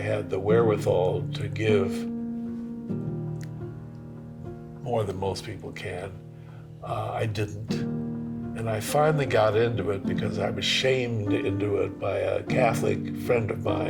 the wherewithal to give more than most people can, I didn't. And I finally got into it because I was shamed into it by a Catholic friend of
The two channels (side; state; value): both; identical; correlation 1.00